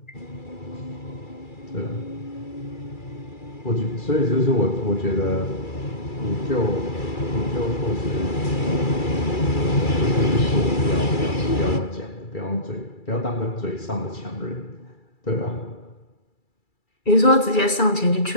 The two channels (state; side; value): late; right; 2.3 ms